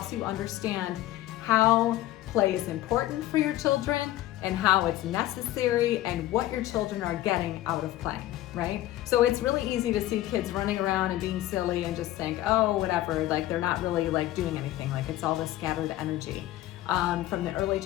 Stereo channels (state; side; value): quieter; right; 14.8 dB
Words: you understand how play is important for your children and how it's necessary and what your children are getting out of playing, right? So it's really easy to see kids running around and being silly and just think, oh, whatever, like they're not really like doing anything, like it's all this scattered energy. From the early